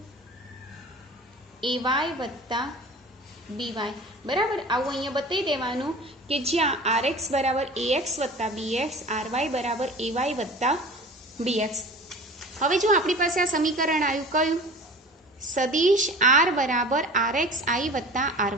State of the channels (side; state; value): both; normal; correlation 0.39